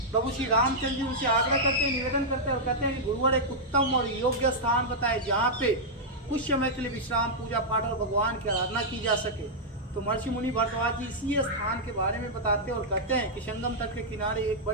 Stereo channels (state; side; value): normal; both; correlation -0.07